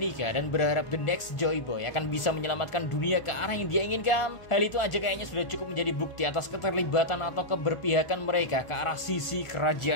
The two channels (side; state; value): right; late; 1.4 ms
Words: dan berharap the next Joy Boy akan bisa menyelamatkan dunia ke arah yang dia inginkan, hal itu aja kayaknya sudah cukup menjadi bukti atas keterlibatan atau keberpihakan mereka ke arah sisi